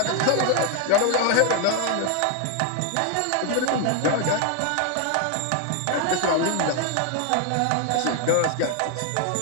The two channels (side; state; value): both; different; correlation 0.00